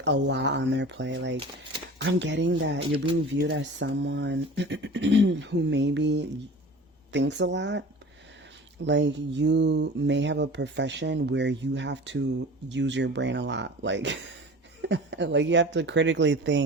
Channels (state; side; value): normal; both; correlation 0.39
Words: a lot on their plate. Like, I'm getting that you're being viewed as someone who maybe thinks a lot. Like, you may have a profession where you have to use your brain a lot. Like, like you have to critically